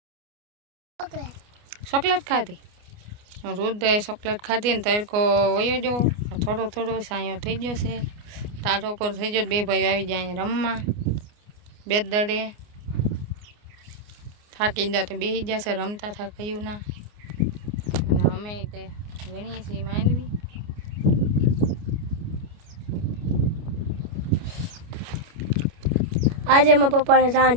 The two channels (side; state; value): left; late; 29 ms